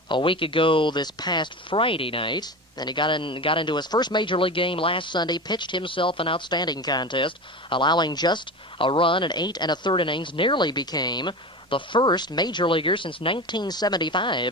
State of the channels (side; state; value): both; normal; correlation 0.28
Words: a week ago this past Friday night. And he got into his first major league game last Sunday, pitched himself an outstanding contest, allowing just a run in 8 1/3 innings, nearly became the first major leaguer since